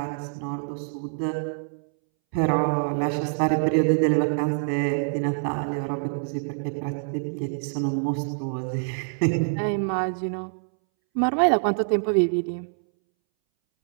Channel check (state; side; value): silent; left; 61 dB below the other